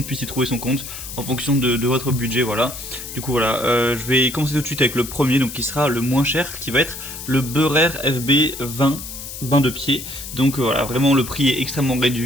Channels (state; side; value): noise; left; hiss, 10 dB below the sound